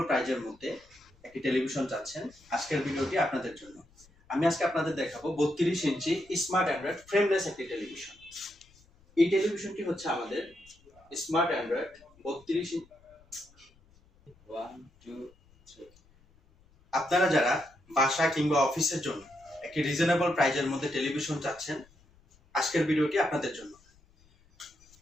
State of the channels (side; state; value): left; noise; rumble, 30 dB below the sound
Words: প্রাইজের মধ্যে একটি টেলিভিশন চাচ্ছেন, আজকের ভিডিওটি আপনাদের জন্য। আমি আজকে আপনাদের দেখাবো 32 ইঞ্চি স্মার্ট অ্যান্ড্রয়েড ফ্রেমলেস একটি টেলিভিশন। এই টেলিভিশনটি হচ্ছে আমাদের স্মার্ট অ্যান্ড্রয়েড 32 ইঞ্চি। আপনারা যারা বাসা কিংবা অফিসের জন্য একটি রিজনেবল প্রাইজের মধ্যে টেলিভিশন চাচ্ছেন, আজকের ভিডিওটি আপনাদের জন্য।